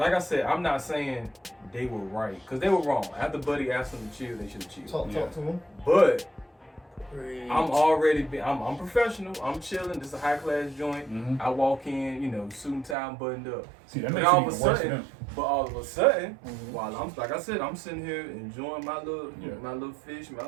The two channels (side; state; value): left; drops out; at 13.0 s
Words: said, I'm not saying they were right, because they were wrong. After Buddy asked them to chill, they should have chilled. Talk to them. But I'm professional. I'm chilling. This is a high class joint. I walk in, you know, suit and tie, buttoned up. See, that makes it even worse for them. But all of a sudden, while I'm, like I said, I'm sitting here enjoying my little fish, my